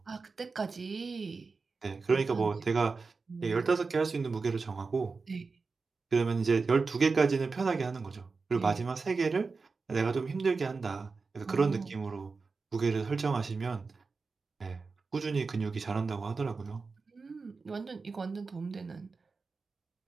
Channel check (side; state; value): left; quieter; 4.4 dB